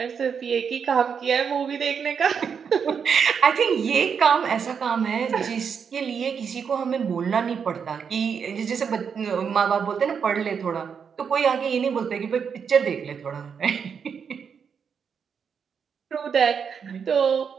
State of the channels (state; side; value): quieter; left; 6.7 dB